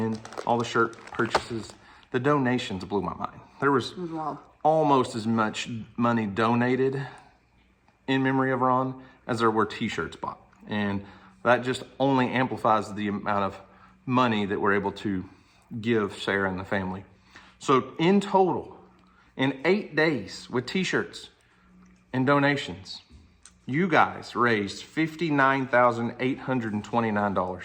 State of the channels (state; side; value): identical; both; correlation 1.00